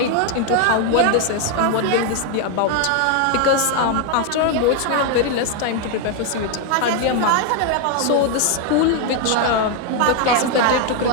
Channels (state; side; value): different; both; correlation 0.01